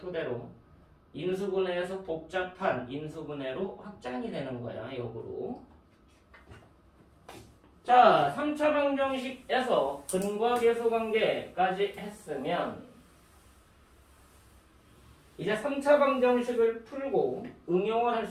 인수분해에서 복잡한 인수분해로 확장이 되는 거야, 역으로. 자, 3차 방정식에서 근과 계수 관계까지 했으면 이제 3차 방정식을 풀고 응용을 할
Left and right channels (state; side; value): identical; both; correlation 1.00